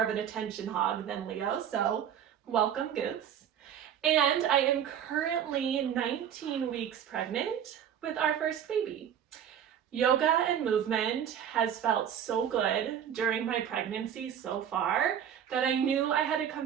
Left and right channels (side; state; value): left; quieter; 9.3 dB